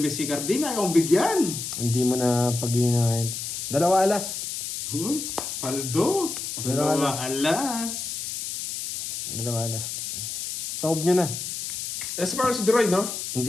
si Carding, ayaw kong bigyan. hindi mo na pag-iinahin. 2 alas. Uy, paldo. Dalawa Dalawa alas. alas. 2 alas. Taob nyo na. Nasa parang si Droy, no?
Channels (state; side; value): noise; left; hiss, 5 dB below the sound